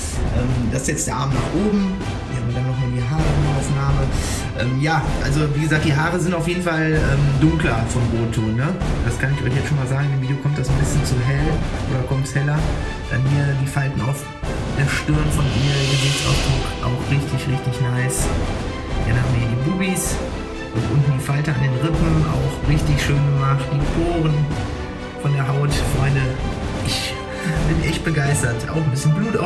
Das ist jetzt der Arm nach oben. Hier haben wir dann nochmal die Haaraufnahme. Ja, also wie gesagt, die Haare sind auf jeden Fall dunkler vom Rotton. Ne? Das kann ich euch jetzt schon mal sagen. Im Video kommt das ein bisschen zu hell oder kommt es heller. Dann hier die Falten auf der Stirn von ihr, Gesichtsausdruck auch richtig, richtig nice. Dann haben wir hier die Bubis und unten die Falte an den Rippen, auch richtig schön gemacht. Die Poren von der Haut, Freunde. Ich bin echt begeistert. Auch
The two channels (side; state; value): both; identical; correlation 1.00